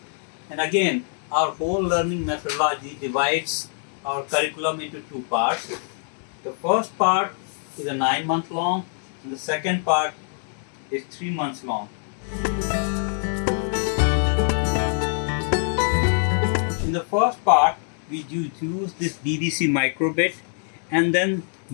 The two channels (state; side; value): silent; right; 57 dB below the other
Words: And again, our whole learning methodology divides our curriculum into two parts. The first part is a 9-month long, and the second part is 3 months long. In the first part, we use this DDC microbit, and then